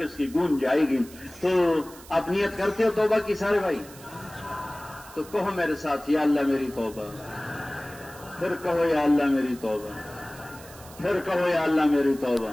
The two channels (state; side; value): noise; right; hiss, 20 dB below the sound